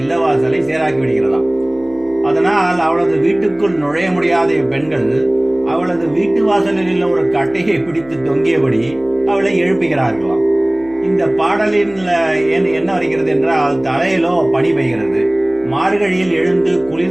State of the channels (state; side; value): noise; left; hum, 22 dB below the sound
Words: சேராக்கி விடுகிறதாம். அதனால் அவளது வீட்டுக்குள் நுழைய முடியாத பெண்கள் அவளது வீட்டு வாசலில் உள்ள ஒரு கட்டையை பிடித்து தொங்கியபடி அவளை எழுப்புகிறார்களாம். இந்த பாடலின் என்ன வருகிறது என்றால், தலையிலோ பனி பெய்கிறது. மார்கழியில் எழுந்து